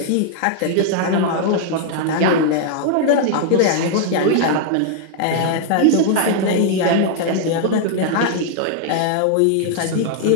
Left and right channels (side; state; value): both; different; correlation 0.00